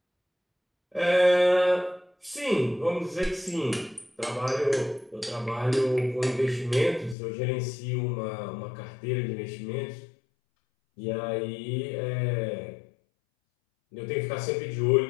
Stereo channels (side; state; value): right; drops out; at 7.2 s